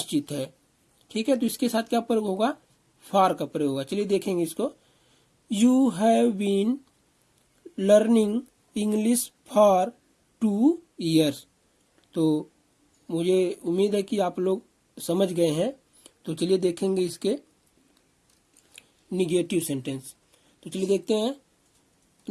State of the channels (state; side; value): identical; both; correlation 1.00